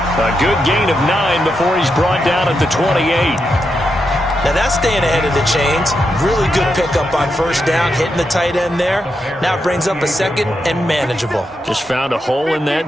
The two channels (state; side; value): normal; both; correlation 0.84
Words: A good gain of 9 before he's brought down at the 28. Now that's staying ahead of the chains. Really good pickup on first down, hitting the tight end there. Now it brings up a second and manageable. Just found a hole in